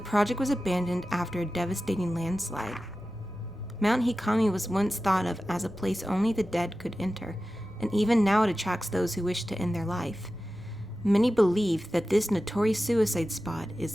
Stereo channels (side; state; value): both; normal; correlation 0.94